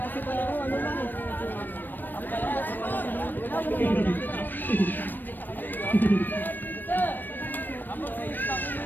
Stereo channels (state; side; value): late; right; 0.092 ms